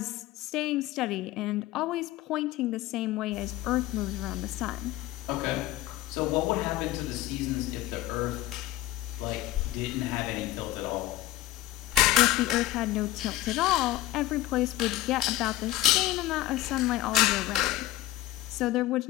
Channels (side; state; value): right; quieter; 15.6 dB